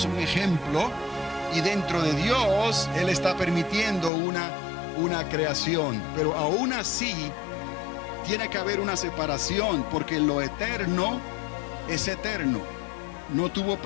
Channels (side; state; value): right; drops out; at 4.1 s